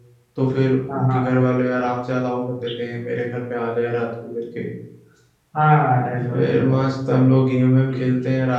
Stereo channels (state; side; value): identical; both; correlation 1.00